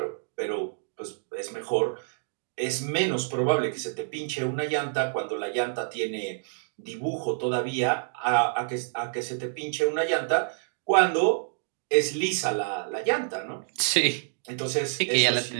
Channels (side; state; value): left; silent; digital silence